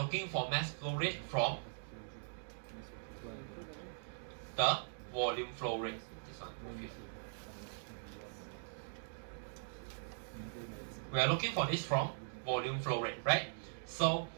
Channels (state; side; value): silent; left; digital silence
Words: for mass flow rate from the volume flow rate. This one, move here. We are looking for this from volume flow rate, right? So